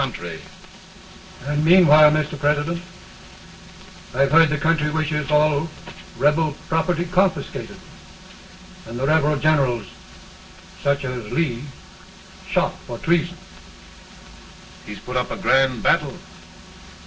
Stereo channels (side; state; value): both; identical; correlation 1.00